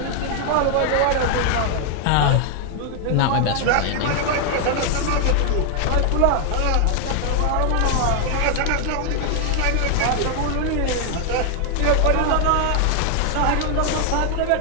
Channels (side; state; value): both; different; correlation 0.00